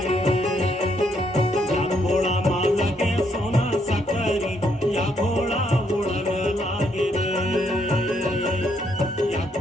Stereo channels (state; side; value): normal; both; correlation 0.73